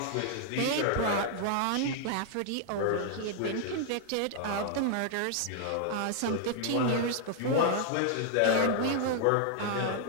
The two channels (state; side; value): different; both; correlation 0.00